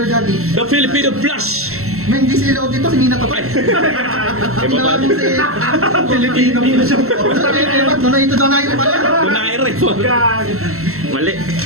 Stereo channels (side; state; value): left; late; 0.63 ms